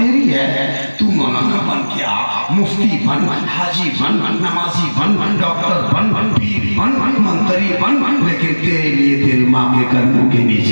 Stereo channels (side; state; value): both; inverted; correlation -1.00